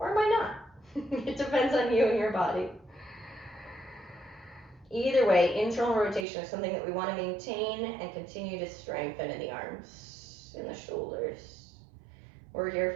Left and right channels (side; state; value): left; drops out; at 6.2 s